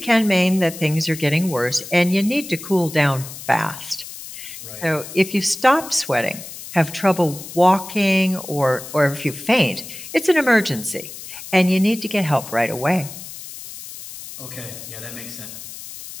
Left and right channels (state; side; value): noise; left; hiss, 13 dB below the sound